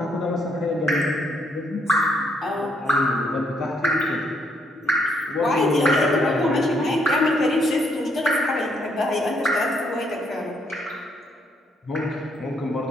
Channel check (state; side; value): normal; both; correlation 0.71